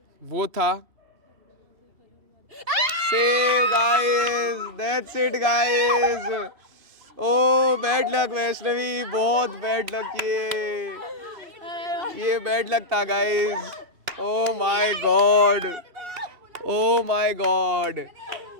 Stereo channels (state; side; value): late; left; 2.7 ms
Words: वो था save guys. That's it guys. Oh bad luck Vaishnavi, बहुत बैड लक ये बैड लक था guys. Oh my god, oh my god,